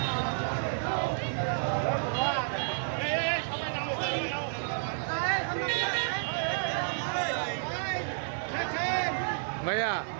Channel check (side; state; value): left; silent; 57 dB below the other